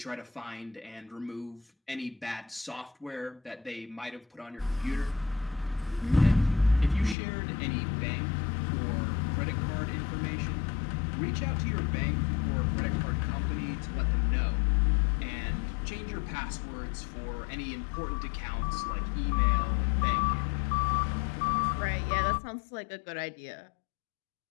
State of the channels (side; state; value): right; drops out; at 7.2 s